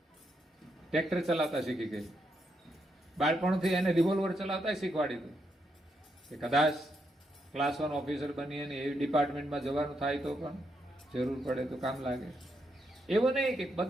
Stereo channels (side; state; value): both; normal; correlation 0.80